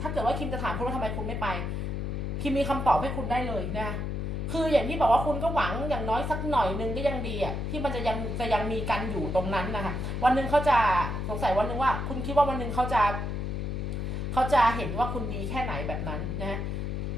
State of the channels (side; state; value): left; noise; hum, 2 dB below the sound